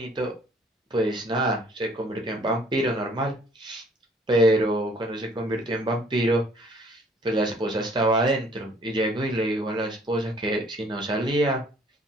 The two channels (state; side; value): normal; both; correlation 0.59